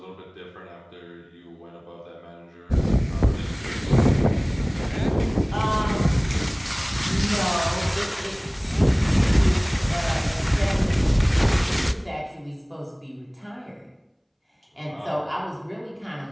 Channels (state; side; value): identical; both; correlation 1.00